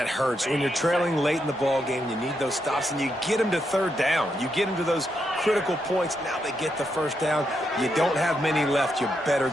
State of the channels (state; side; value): normal; both; correlation 0.81